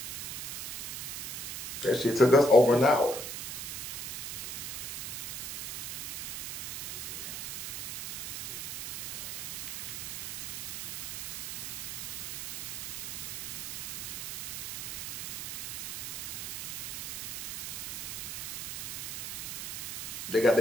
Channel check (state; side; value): noise; right; hiss, 5 dB below the sound